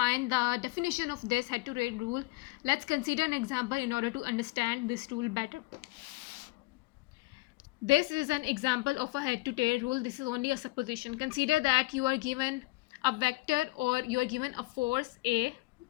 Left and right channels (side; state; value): right; quieter; 22.7 dB